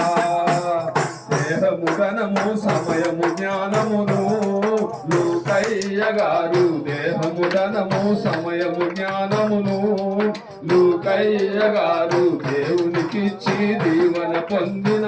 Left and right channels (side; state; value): both; identical; correlation 1.00